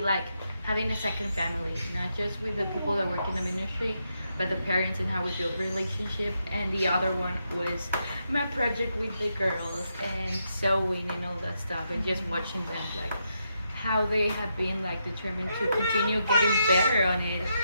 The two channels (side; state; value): both; inverted; correlation -0.82